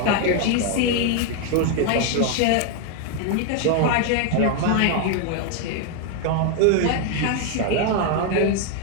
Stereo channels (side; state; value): both; different; correlation 0.00